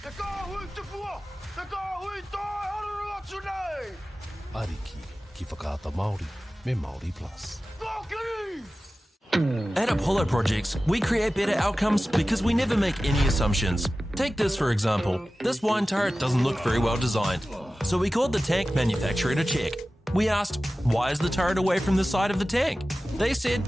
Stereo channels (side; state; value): both; normal; correlation 0.96